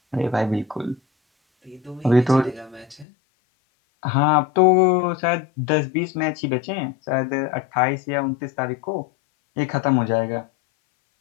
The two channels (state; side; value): drops out; right; at 3.1 s